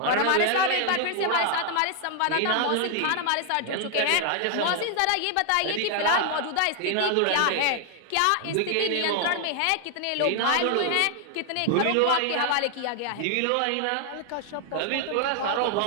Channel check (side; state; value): both; different; correlation 0.00